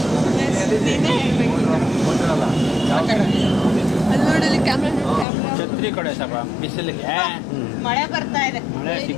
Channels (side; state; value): right; drops out; at 5.2 s